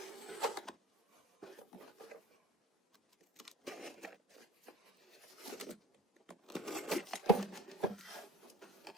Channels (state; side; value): normal; both; correlation 0.40